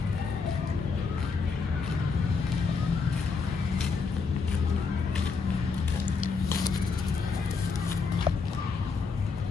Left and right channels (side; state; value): right; quieter; 4.8 dB